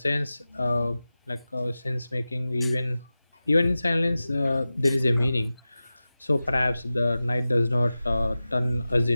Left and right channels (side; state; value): both; inverted; correlation -0.95